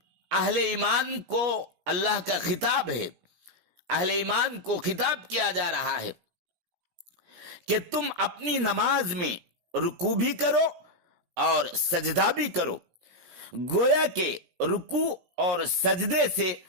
اہل ایمان کو اللہ کا خطاب ہے، اہل ایمان کو خطاب کیا جا رہا ہے کہ تم اپنی نماز میں رکوع بھی کرو اور سجدہ بھی کرو۔ گویا کہ رکوع اور سجدے سے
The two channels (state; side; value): late; left; 17 ms